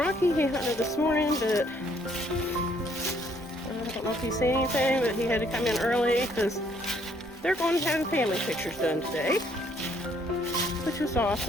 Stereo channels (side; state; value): both; normal; correlation 0.66